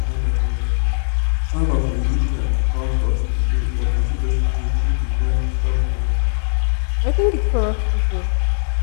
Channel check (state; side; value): silent; right; digital silence